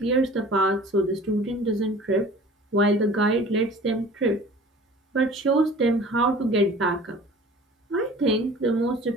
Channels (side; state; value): both; normal; correlation 0.45